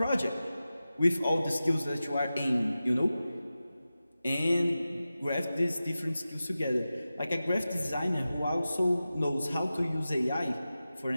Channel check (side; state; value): both; inverted; correlation -0.94